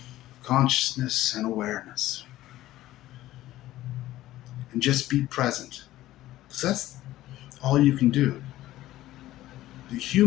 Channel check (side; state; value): right; quieter; 15.2 dB